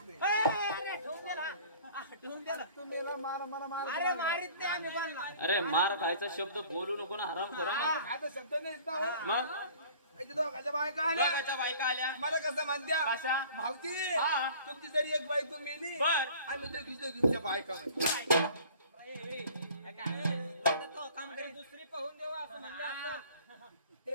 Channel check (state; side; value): inverted; both; correlation -0.48